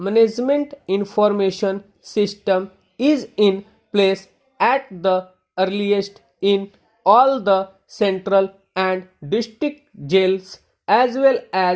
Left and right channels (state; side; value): identical; both; correlation 1.00